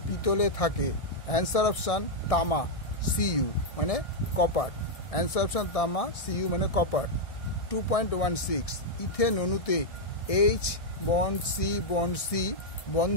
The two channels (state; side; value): late; right; 1.6 ms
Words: পিতলে থাকে? অ্যান্সার অপশান তামা, Cu মানে কপার। অ্যান্সার অপশান তামা, Cu মানে কপার। 2.16 ইথেন অণুতে H বন্ড C